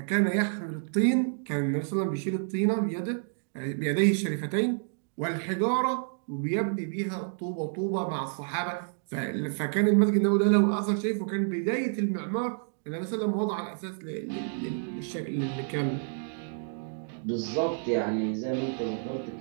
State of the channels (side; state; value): left; silent; digital silence